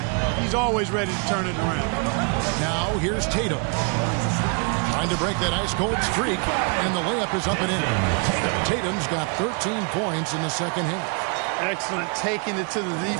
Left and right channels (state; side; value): quieter; left; 37.2 dB